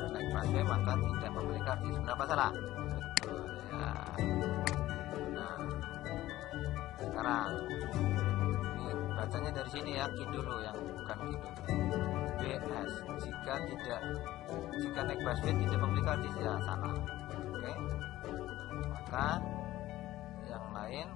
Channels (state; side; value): quieter; right; 15.5 dB